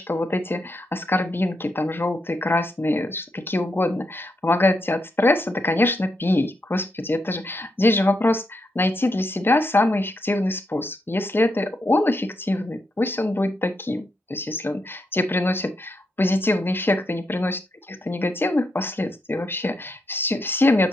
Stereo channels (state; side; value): normal; both; correlation 0.82